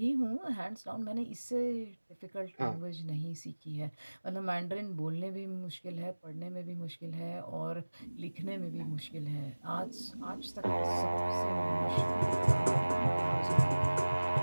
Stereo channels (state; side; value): inverted; both; correlation -1.00